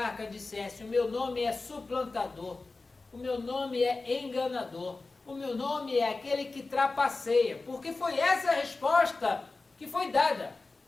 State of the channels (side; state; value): right; quieter; 3.6 dB